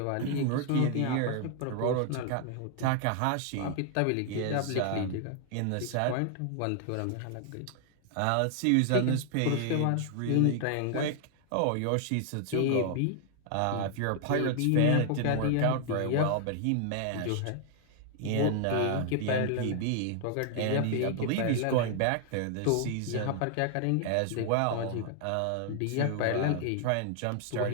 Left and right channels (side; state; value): both; different; correlation 0.00